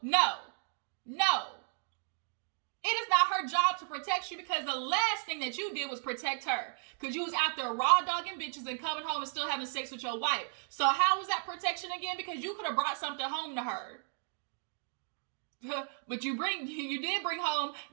It is not her job to protect you because the last thing that you did was protect her. Because you was out there raw dogging bitches and coming home and still having sex with your wife. So how was that protection again? Because you could have brought something home to her. But you did bring home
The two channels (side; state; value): left; silent; 55 dB below the other